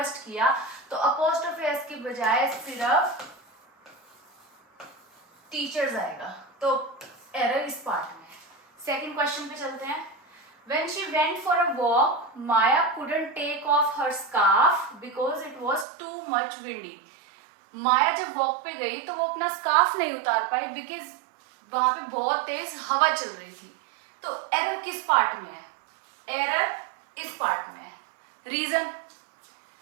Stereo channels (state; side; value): drops out; left; at 15.9 s